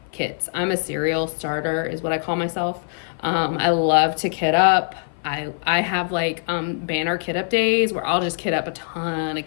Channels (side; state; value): right; silent; 55 dB below the other